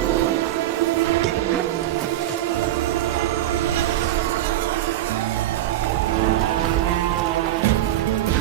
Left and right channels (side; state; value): left; quieter; 13.7 dB